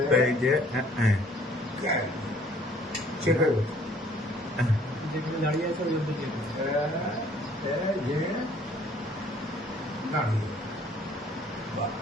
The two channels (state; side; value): normal; both; correlation 0.58